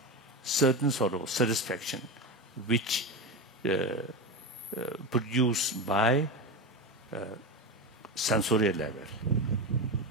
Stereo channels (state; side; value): normal; both; correlation 0.18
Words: certain sort of satisfaction, which produced by sensorial level.